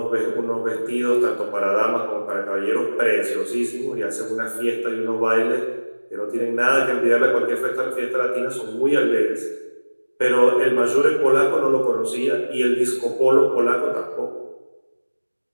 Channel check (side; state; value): both; inverted; correlation -1.00